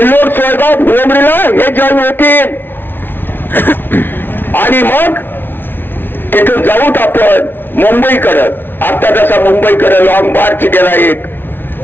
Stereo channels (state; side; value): late; right; 0.10 ms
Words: सोयगाव, भोमरीला हे जॉईन होतील, आणि मग तिथून जाऊत आपण मुंबईकडं. आता जसा मुंबईकडे लॉंग मार्च गेला एक,